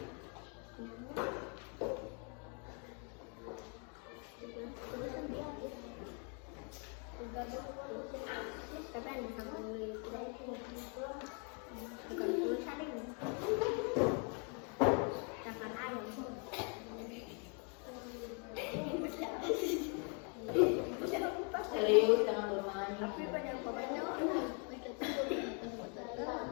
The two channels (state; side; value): quieter; right; 38.4 dB